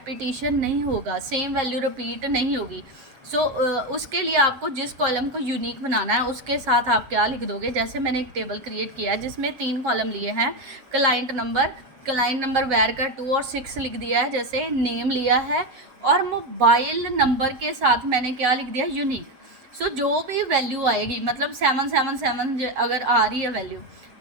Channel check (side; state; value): left; late; 7.8 ms